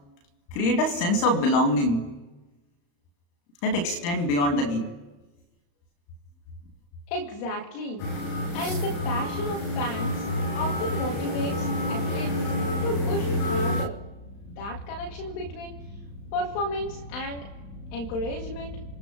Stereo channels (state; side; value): late; right; 35 ms